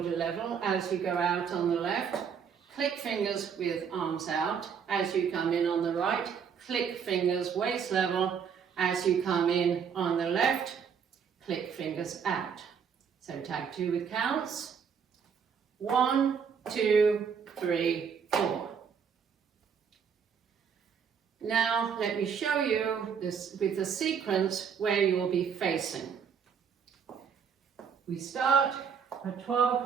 level. As you go out on the left, click fingers with arms out. As you come in on the right, click fingers waist level. As you come in on the left, click fingers out. So tag 2 with counts. 1, 2, 3, 4. Now let me show you this with the sequence where you will be facing. We start at 12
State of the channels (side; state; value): left; quieter; 6.9 dB